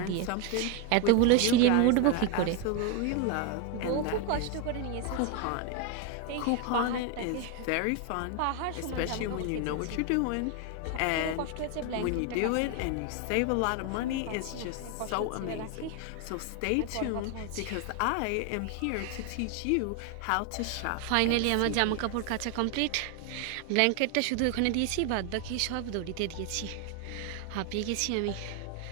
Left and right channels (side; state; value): both; different; correlation 0.01